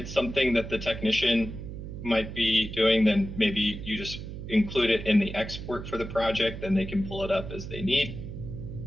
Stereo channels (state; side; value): noise; right; hum, 9 dB below the sound